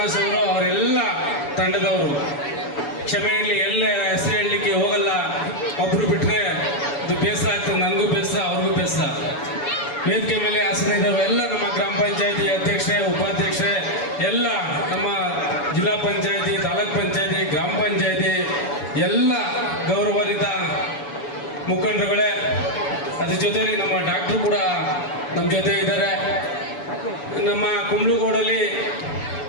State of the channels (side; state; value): right; late; 7.0 ms